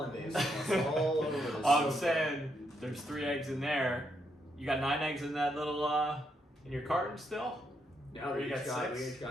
sauce all over this. I'm saying there's 3 eggs in there. You got 9 eggs in that little in your carton still? No, we got 6. We each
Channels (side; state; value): both; normal; correlation 0.78